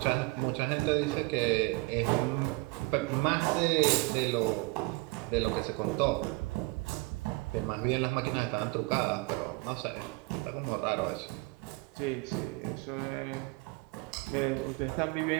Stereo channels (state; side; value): quieter; left; 24.5 dB